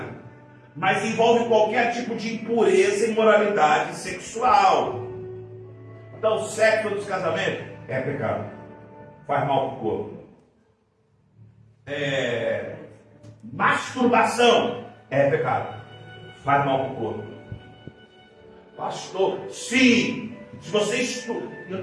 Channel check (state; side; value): identical; both; correlation 1.00